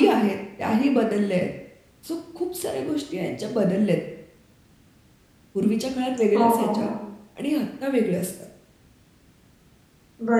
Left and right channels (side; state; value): both; identical; correlation 1.00